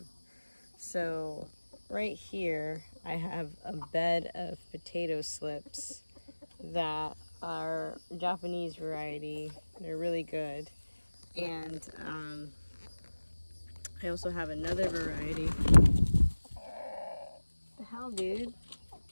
So right here I have a bed of potato slips that are Japanese variety. They're really good. And I also have another variety. What the hell, dude?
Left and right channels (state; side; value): inverted; both; correlation -1.00